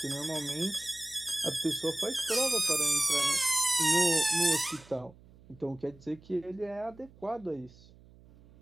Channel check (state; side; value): noise; right; hum, 24 dB below the sound